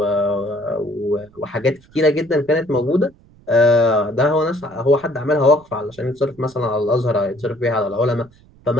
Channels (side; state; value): right; noise; rumble, 28 dB below the sound